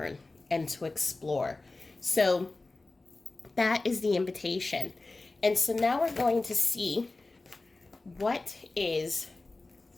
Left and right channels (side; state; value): right; quieter; 3.3 dB